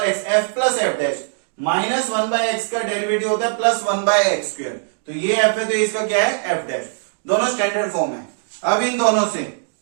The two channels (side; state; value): left; silent; digital silence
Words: x f plus f dash minus 1/x का derivative होता है प्लस 1/x², तो ये f है तो इसका क्या है f डैश, दोनों स्टैंडर्ड फॉर्म है। अब इन दोनों से